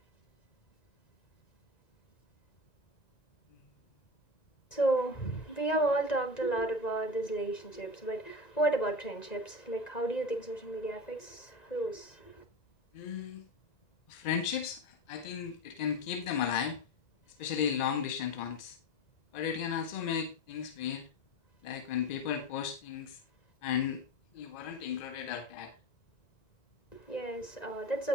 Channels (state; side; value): late; right; 1.9 ms